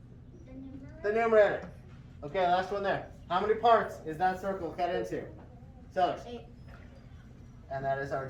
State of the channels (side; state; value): both; identical; correlation 1.00